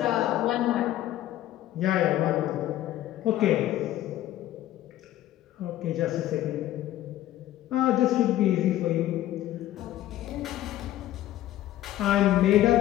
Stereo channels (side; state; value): right; quieter; 13.7 dB